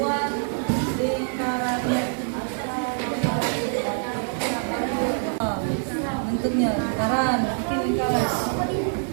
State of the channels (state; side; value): silent; left; 62 dB below the other